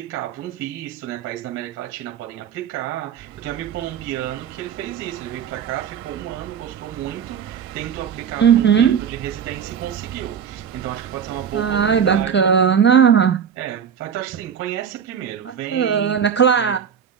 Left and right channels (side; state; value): left; quieter; 7.7 dB